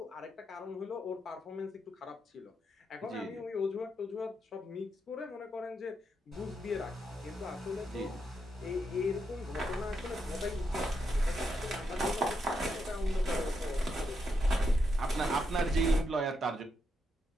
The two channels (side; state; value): both; normal; correlation 0.81